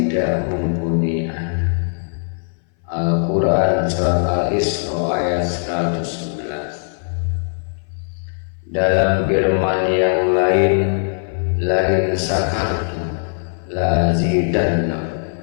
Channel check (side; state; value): right; silent; 60 dB below the other